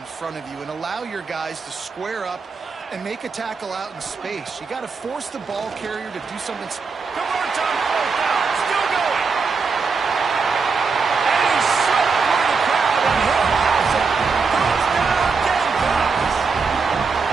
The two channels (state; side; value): quieter; left; 4.9 dB